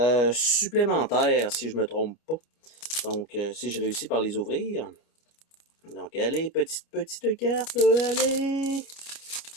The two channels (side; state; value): right; late; 29 ms